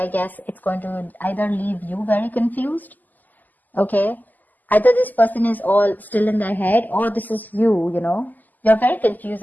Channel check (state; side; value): late; right; 0.083 ms